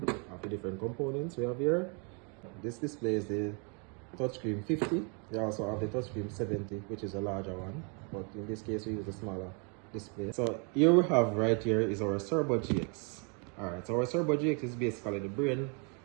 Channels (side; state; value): left; quieter; 35.7 dB